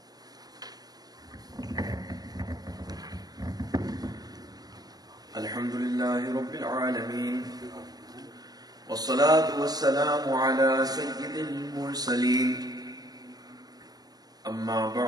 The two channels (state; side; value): late; left; 0.19 ms